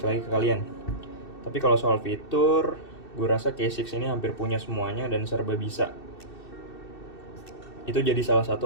lagi ke kalian. Tapi kalau soal fitur, gue rasa K6 ini hampir punya semuanya dan serba bisa. Itu jadi salah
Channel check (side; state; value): right; late; 2.7 ms